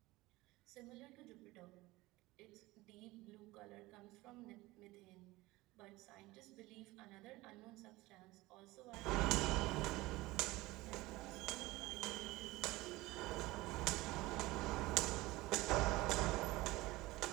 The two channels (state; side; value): quieter; left; 19.9 dB